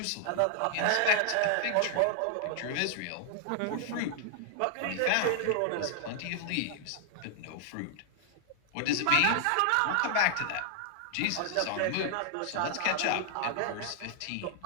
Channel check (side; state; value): both; different; correlation 0.00